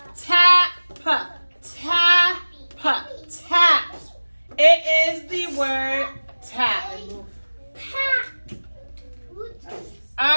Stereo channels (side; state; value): both; inverted; correlation -1.00